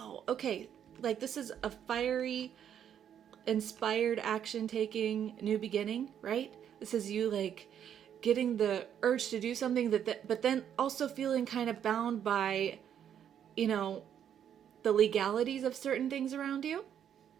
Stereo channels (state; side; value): quieter; left; 9.2 dB